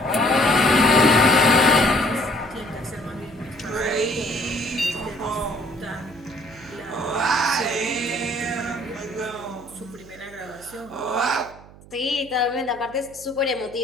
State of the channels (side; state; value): right; noise; hum, 21 dB below the sound